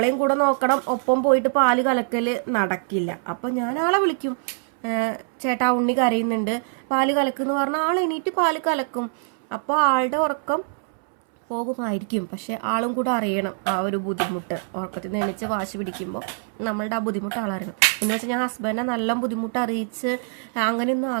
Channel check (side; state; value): left; silent; 63 dB below the other